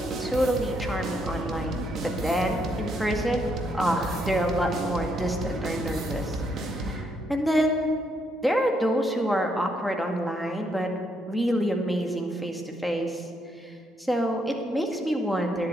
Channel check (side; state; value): both; normal; correlation 0.75